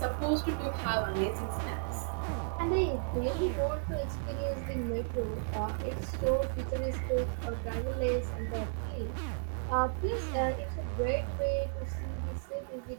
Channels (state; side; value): silent; left; digital silence